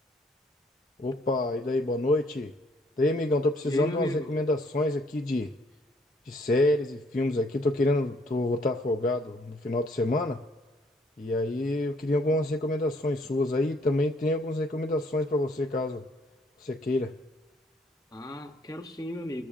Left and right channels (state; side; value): normal; both; correlation 0.65